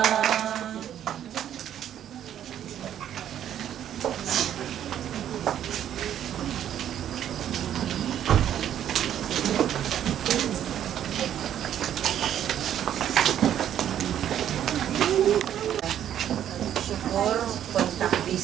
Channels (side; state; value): left; quieter; 10.5 dB